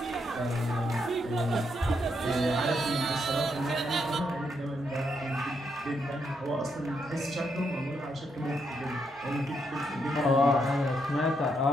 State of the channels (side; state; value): both; normal; correlation 0.78